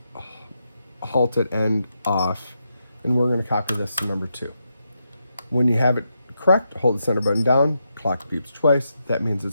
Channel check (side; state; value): both; inverted; correlation -0.84